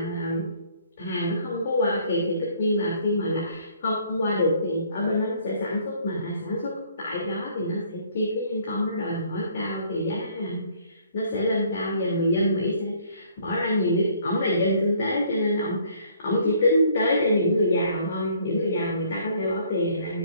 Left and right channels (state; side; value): inverted; both; correlation -0.61